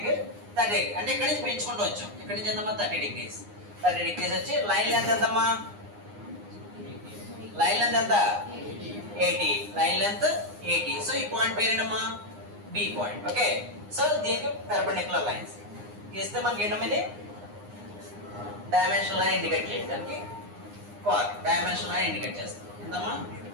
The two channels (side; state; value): left; late; 9.7 ms